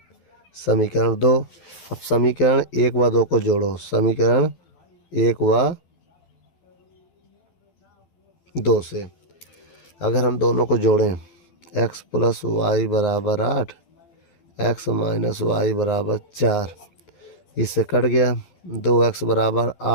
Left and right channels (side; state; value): right; late; 12 ms